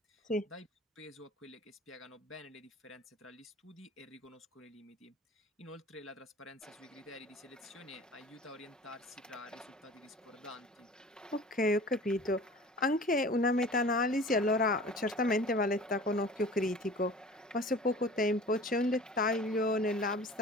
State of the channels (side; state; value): both; normal; correlation 0.42